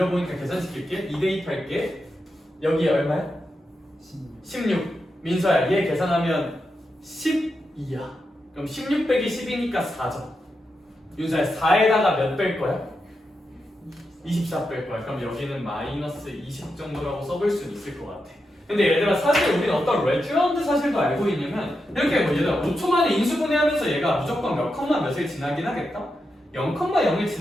계산시킬게. 2 대입할게. 여기 얼마야? 16. 민서야 얘 계산하면 12야. 그럼 16 빼기 10이니까 4죠. 윤서야 4에다가 몇 뺄 거야? 24 뺄 거야. 그럼 여기는 마이너스 20 정도라고 써볼 수는 있을 것 같아. 근데 얘들아 사실 우리는 어떤 레쥬런드 사실도 알고 있냐면 이렇게 뭐 얘들아 5초 만에 인수분해하면서 얘가 무조건 몇 컴마 몇을 지나긴 하겠다? 0,0을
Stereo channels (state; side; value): normal; both; correlation 0.87